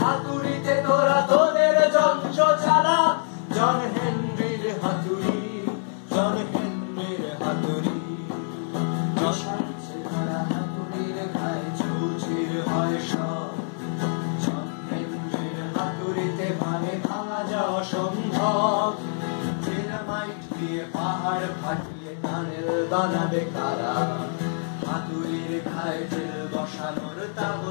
তোরা তোদের যন্ত্র চালা, জন হেনরির হাতুড়ি, জন হেনরির হাতুড়ি। যশান চেহারা হাতুড়ির ঘায়ে চৌচির হয় সব, জন হেনরির হাতুড়িতে ভাঙে ভাঙা যা অসম্ভব, ডিনামাইট দিয়ে পাহাড় ফাটিয়ে টানেল বানাবে কারা, হাতুড়ির ঘায়ে জেল বসানোর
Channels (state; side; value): silent; right; digital silence